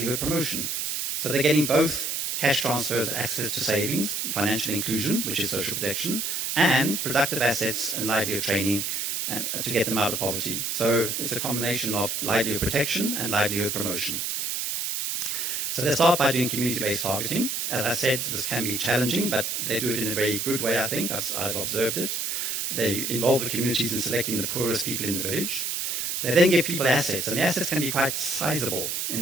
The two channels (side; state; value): right; noise; hiss, 1 dB below the sound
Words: promotion. So they're getting both cash transfers, access to savings, financial inclusion, which is social protection, and productive assets and livelihood training to get them out of poverty. So it's a combination of livelihood protection and livelihood promotion. So they start by doing community-based targeting. As I said, this can be challenging, but they do it in a very good way, I think. I've observed it. They involve the communities in selecting the poorest people in the village. They then give people assets, and the assets can be quite sizable. In